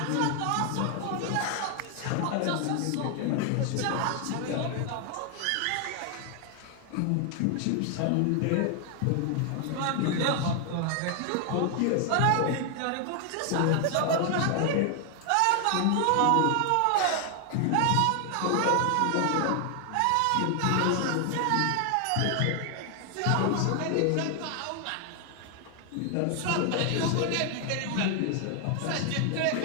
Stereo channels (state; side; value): different; both; correlation 0.00